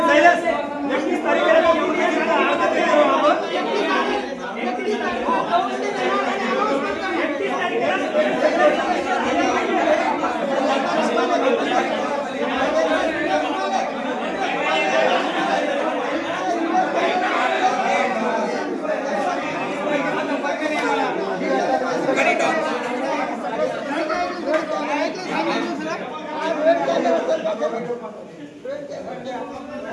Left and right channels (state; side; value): identical; both; correlation 1.00